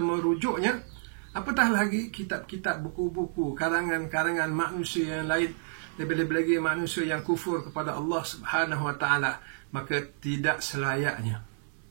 apatah lagi kitab-kitab, buku-buku, karangan-karangan manusia yang lain, lebih-lebih lagi manusia yang kufur kepada Allah Subhanahu wa taala. Maka tidak selayaknya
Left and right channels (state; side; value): silent; left; digital silence